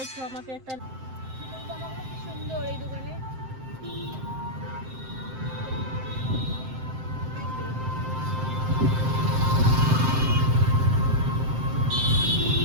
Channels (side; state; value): left; late; 7.7 ms